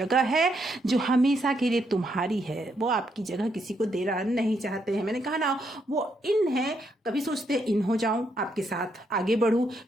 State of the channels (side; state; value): both; normal; correlation 0.77